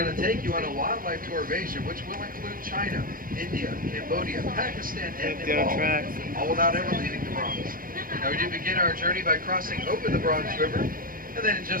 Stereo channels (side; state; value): left; late; 0.41 ms